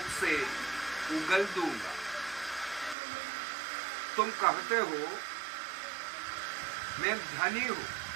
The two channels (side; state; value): left; drops out; at 3.0 s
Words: से उगल दूंगा। तुम कहते हो मैं धनी हूं,